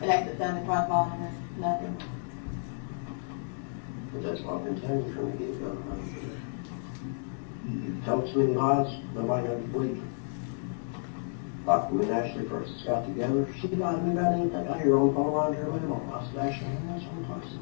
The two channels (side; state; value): right; silent; digital silence